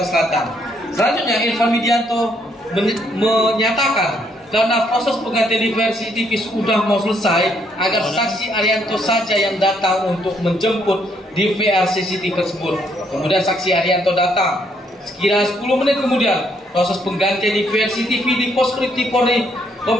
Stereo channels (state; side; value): normal; both; correlation 0.71